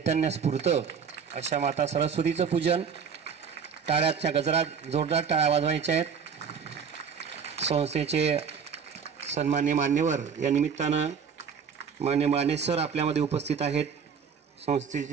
स्फुरतं अशा माता सरस्वतीचं पूजन। टाळ्याच्या गजरात जोरदार टाळ्या वाजवायच्या आहेत। संस्थेचे सन्मान्य मान्यवर या निमित्तानं मान्य माने सर आपल्यामध्ये उपस्थित आहेत।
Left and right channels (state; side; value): quieter; left; 6.6 dB